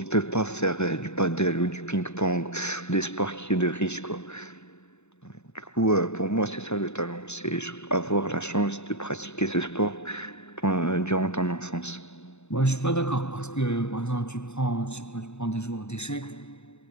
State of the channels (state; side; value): late; right; 0.81 ms